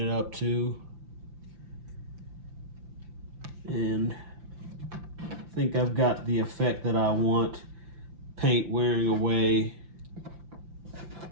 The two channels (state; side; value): late; left; 5.8 ms